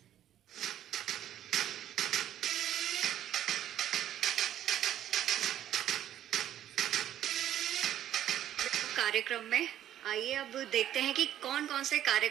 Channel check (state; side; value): quieter; left; 11.5 dB